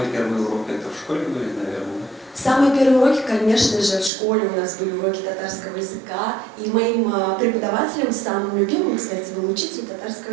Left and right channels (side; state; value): left; drops out; at 4.1 s